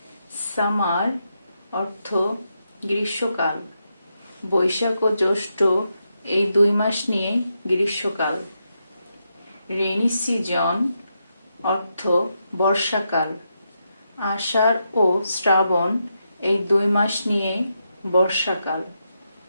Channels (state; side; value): inverted; both; correlation -0.84